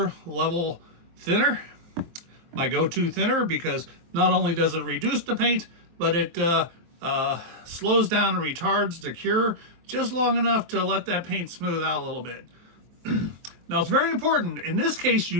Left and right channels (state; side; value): late; left; 23 ms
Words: Level thinner, my go-to thinner, because not only does it reduce the paint, but it slows down and retards the cure just long enough to let that paint smooth out a little bit. Now it's very important, in this case